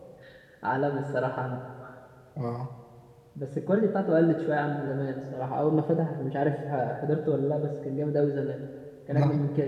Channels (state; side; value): identical; both; correlation 1.00